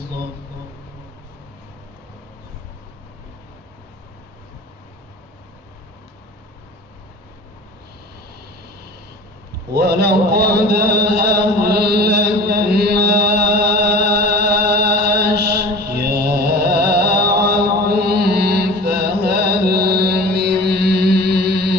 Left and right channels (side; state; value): both; normal; correlation 0.40